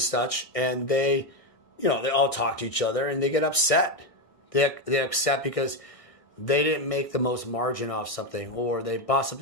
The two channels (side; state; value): right; late; 1.6 ms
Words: such, and they all talk to each other, and they get upset. They upset because they didn't make the most margin off something, or they bought